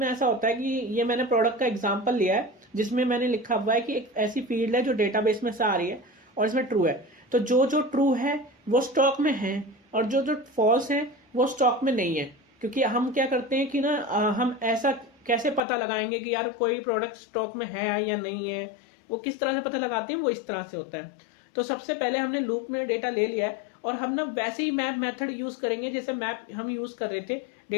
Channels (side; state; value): right; drops out; at 15.6 s